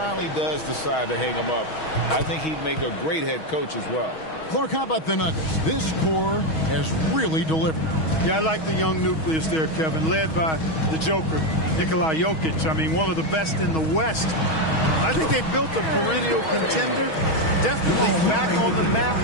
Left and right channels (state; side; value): late; right; 6.3 ms